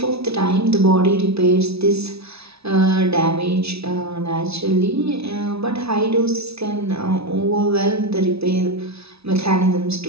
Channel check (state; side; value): late; left; 0.78 ms